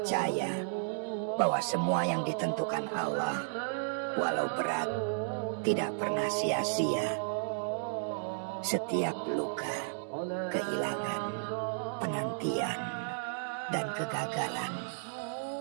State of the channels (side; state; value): left; silent; digital silence